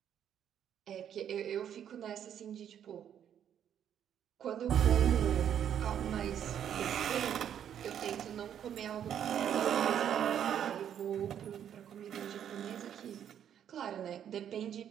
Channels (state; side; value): quieter; left; 9.4 dB